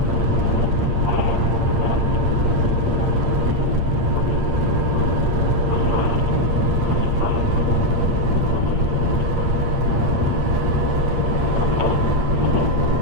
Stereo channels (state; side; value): late; left; 8.7 ms